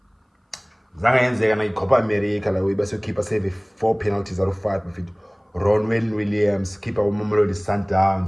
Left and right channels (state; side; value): identical; both; correlation 1.00